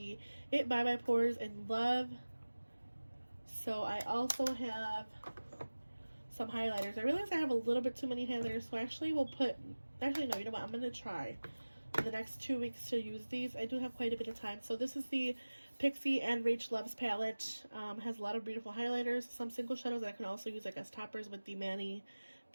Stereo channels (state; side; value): inverted; both; correlation -1.00